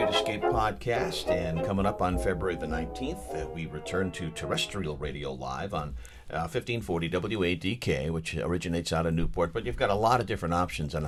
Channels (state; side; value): identical; both; correlation 1.00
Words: Escape podcast, and coming up on February the 19th, we return to terrestrial radio live on 1540 WADK, which originates out of Newport, but you've got a lot of different options on